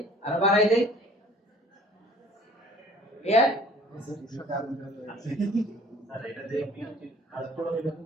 আর বাড়াই দেই, ক্লিয়ার? স্যার এটা দিয়ে কাজ করা যাবে?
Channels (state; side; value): normal; both; correlation 0.51